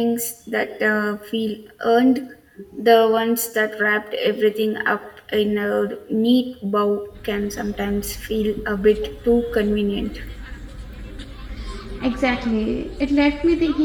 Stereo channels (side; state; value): both; identical; correlation 1.00